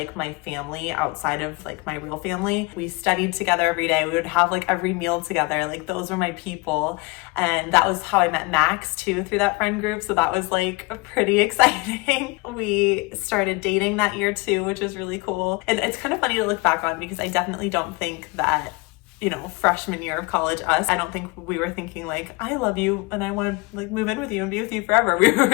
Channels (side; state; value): right; quieter; 25.8 dB